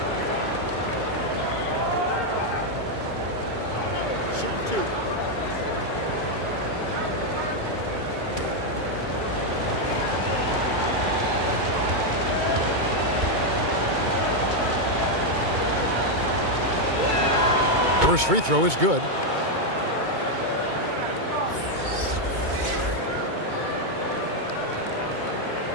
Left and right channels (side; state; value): left; late; 2.2 ms